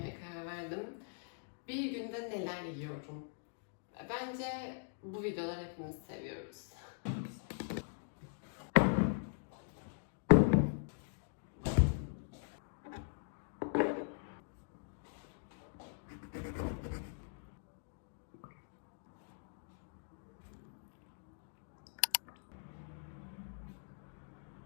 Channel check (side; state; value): right; silent; digital silence